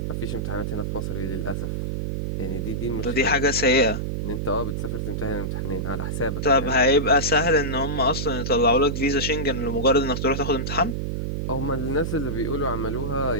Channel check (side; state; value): right; noise; hum, 2 dB below the sound